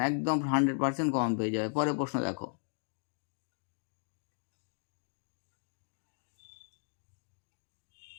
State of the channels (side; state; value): right; silent; digital silence